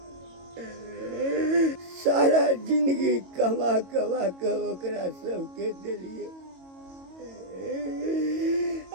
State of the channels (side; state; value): left; late; 22 ms